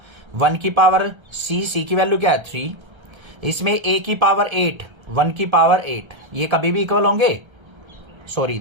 1 की पावर सी की वैल्यू क्या है 3, इसमें ए की पावर 8, 1 की पावर 8, ये कभी भी इक्वल होंगे, सॉरी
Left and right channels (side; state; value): left; late; 1.3 ms